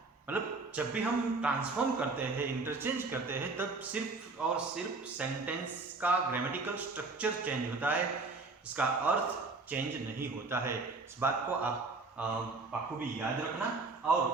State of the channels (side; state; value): left; quieter; 3.7 dB